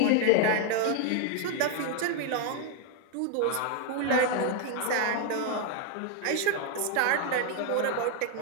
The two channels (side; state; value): both; different; correlation 0.00